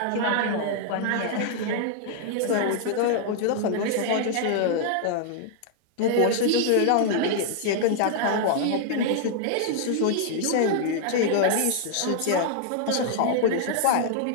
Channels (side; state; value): both; different; correlation -0.01